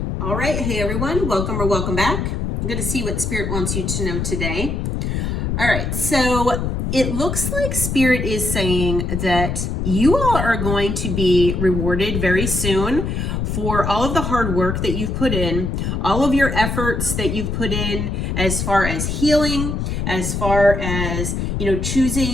All right. Hey, everyone. Welcome or welcome back. I'm going to see what Spirit wants you to know today. All right. So it looks like Spirit is saying that you all are going to be rewarded very soon for all of the hard work that you've put in, all of your efforts that you've put in as far as healing, as far as,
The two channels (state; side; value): noise; left; rumble, 2 dB below the sound